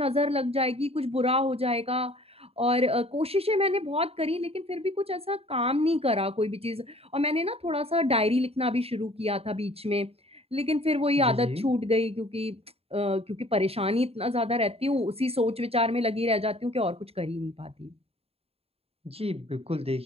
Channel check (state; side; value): late; left; 0.29 ms